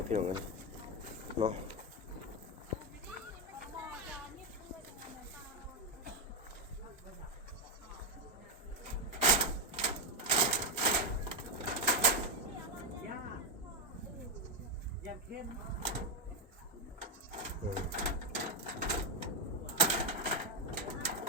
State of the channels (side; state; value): both; normal; correlation 0.05